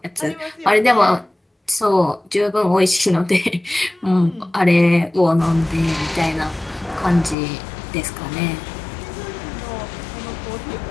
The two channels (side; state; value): right; drops out; at 7.4 s